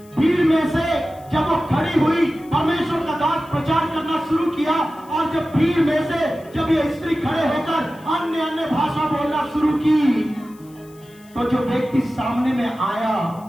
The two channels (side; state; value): left; noise; hiss, 27 dB below the sound